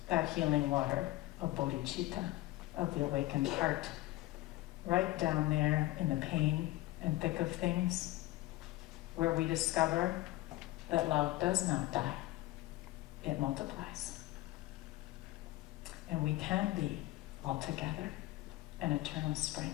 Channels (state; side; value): quieter; right; 17.7 dB